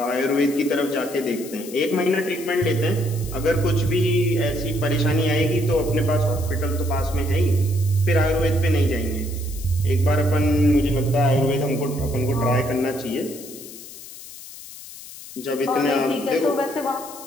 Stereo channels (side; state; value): left; noise; hiss, 15 dB below the sound